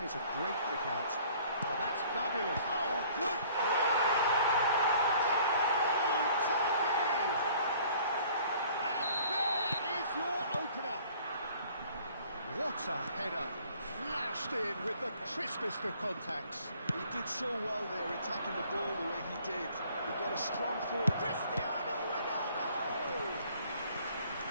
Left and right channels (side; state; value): both; inverted; correlation -0.55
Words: is a great pick out. Oh, that's fabulous. Oh, good play! Goal, Turkey! And there is your opener. What a header. Flashed in with the crispest of contacts. He did so well there, attacking the ball the way he did. He got a strong forward. Cristiano Ronaldo!